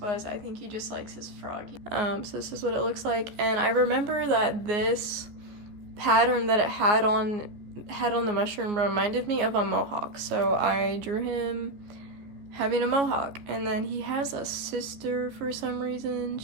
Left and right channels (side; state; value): left; late; 14 ms